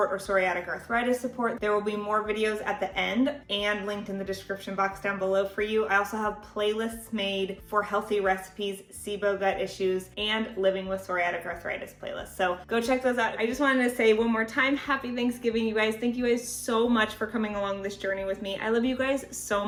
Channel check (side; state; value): both; identical; correlation 1.00